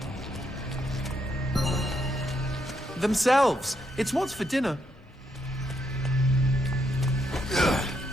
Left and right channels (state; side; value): normal; both; correlation 0.77